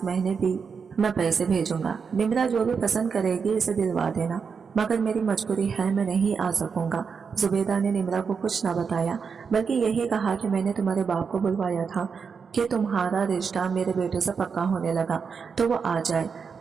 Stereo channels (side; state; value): left; quieter; 5.9 dB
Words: महीने भी मैं पैसे भेजूंगा। निम्रा जो भी पसंद करेगी इसे दिलवा देना, मगर मेरी मजबूरी है मैं नहीं आ सकूंगा। जुबेदा ने निम्रा को कुछ न बताया बल्कि यही कहा कि मैंने तुम्हारे बाप को बुलवाया था कि तुम्हारा रिश्ता मेरे बेटे से पक्का होने लगा तो वो आ जाए,